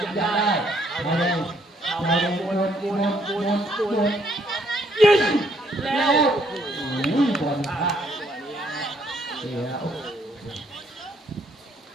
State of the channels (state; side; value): normal; both; correlation 0.68